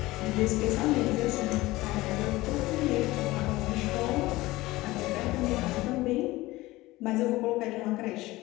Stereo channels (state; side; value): quieter; right; 19.1 dB